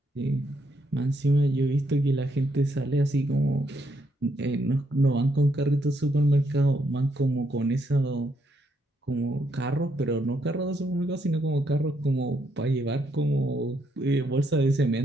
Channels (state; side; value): normal; both; correlation 0.75